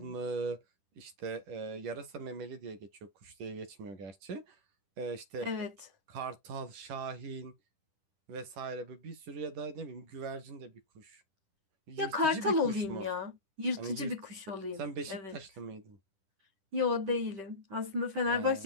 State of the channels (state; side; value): late; left; 10 ms